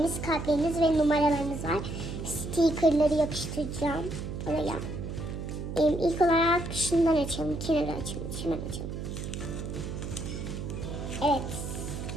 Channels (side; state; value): right; noise; hum, 6 dB below the sound